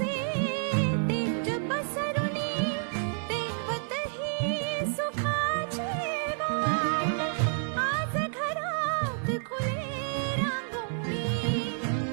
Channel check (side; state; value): left; silent; digital silence